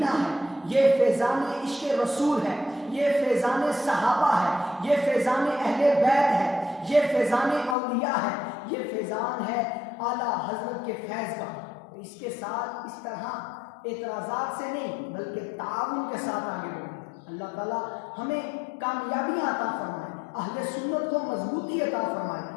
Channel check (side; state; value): right; drops out; at 7.8 s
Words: है, ये फैज़ान इश्क़ रसूल है, ये फैज़ान सहाबा है, ये फैज़ान अहले बैत है, ये फैज़ान औलिया है, ये फैज़ान है आला हजरत के फैज़ का। इसके साथ इस तरह एतराज़ात से नहीं बल्कि ताउन के साथ आगे बढ़ें। अल्लाह ताला हमें कामयाबियाँ अता फरमाए, अहले सुन्नत को मजबूती अता फरमाए,